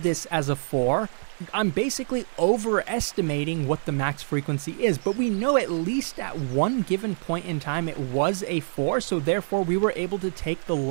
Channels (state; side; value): silent; left; digital silence